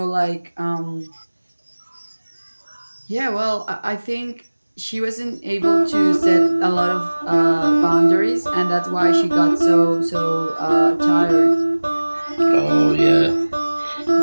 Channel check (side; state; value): both; inverted; correlation -1.00